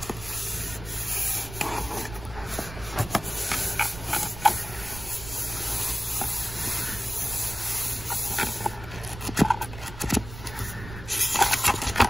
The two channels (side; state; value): right; noise; rumble, 12 dB below the sound